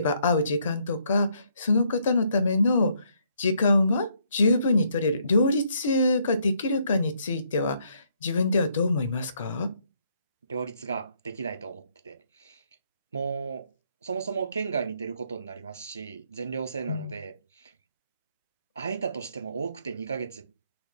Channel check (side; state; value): both; inverted; correlation -0.70